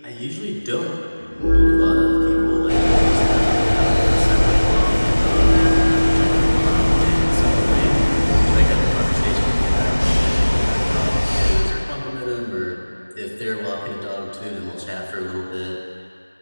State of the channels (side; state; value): both; inverted; correlation -1.00